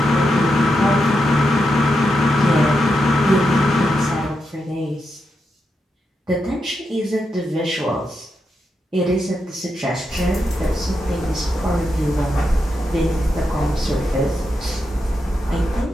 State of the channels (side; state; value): both; normal; correlation 0.85